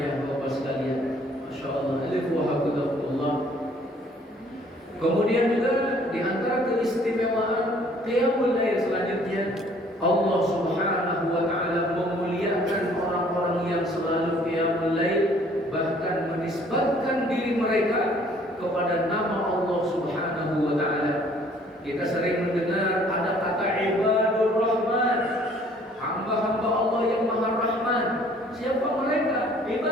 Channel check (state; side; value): normal; both; correlation 0.58